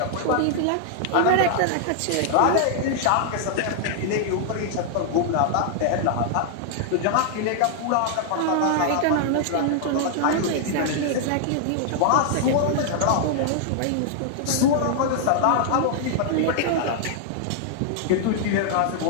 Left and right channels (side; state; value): both; different; correlation -0.01